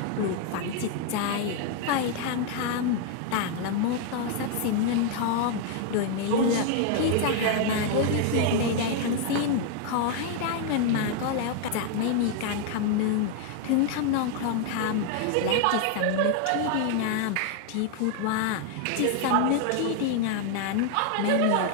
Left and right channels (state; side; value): different; both; correlation 0.00